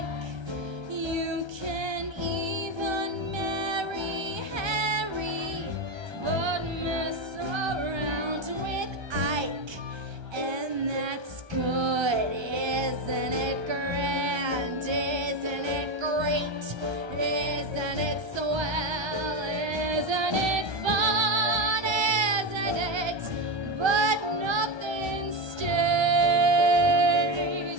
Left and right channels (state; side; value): late; left; 1.3 ms